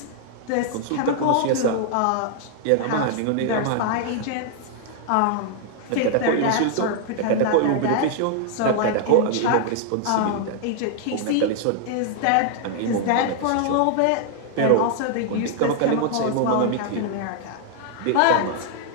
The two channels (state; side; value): different; both; correlation 0.00